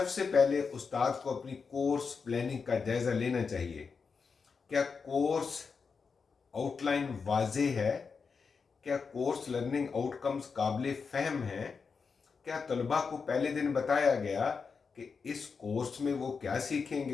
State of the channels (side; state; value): right; quieter; 5.3 dB